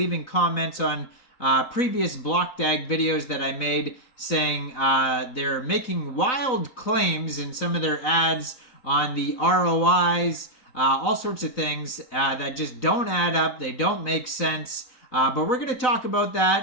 comments on previous Blockdag videos that I made saying they're making wild claims in some of their ads on the ROIs, all sorts of things that just don't add up, they don't make sense. But we're going to talk about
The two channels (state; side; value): late; right; 4.0 ms